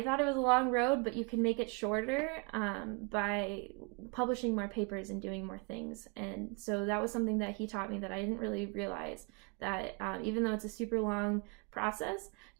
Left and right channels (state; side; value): quieter; left; 32.5 dB